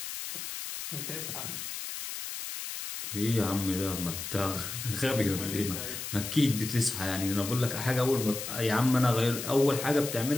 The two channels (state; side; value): noise; left; hiss, 7 dB below the sound